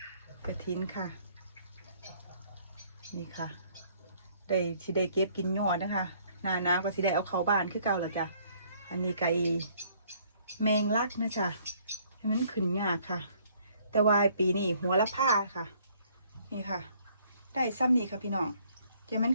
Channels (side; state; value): both; inverted; correlation -0.62